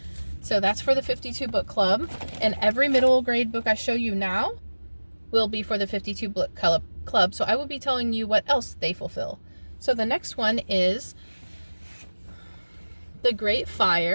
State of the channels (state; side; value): inverted; both; correlation -1.00